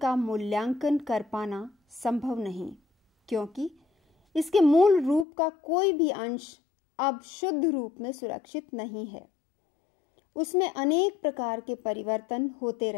मूल्यांकन कर पाना संभव नहीं, क्योंकि इसके मूल रूप का कोई भी अंश अब शुद्ध रूप में सुरक्षित नहीं है। उसमें अनेक प्रकार के परिवर्तन होते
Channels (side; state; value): right; drops out; at 5.2 s